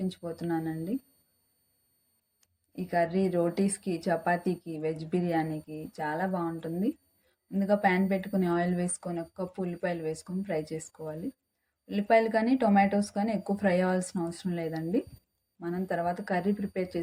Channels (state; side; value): identical; both; correlation 1.00